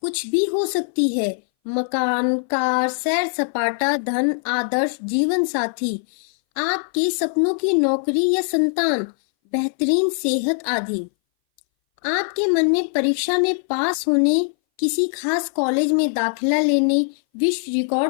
कुछ भी हो सकती है, मकान, कार, सैर सपाटा, धन, आदर्श जीवन साथी, आपके सपनों की नौकरी या संतान, बेहतरीन सेहत आदि। आपके मन में परीक्षा में पास होने, किसी खास कॉलेज में दाखिला लेने, विश्व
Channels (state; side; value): silent; right; 61 dB below the other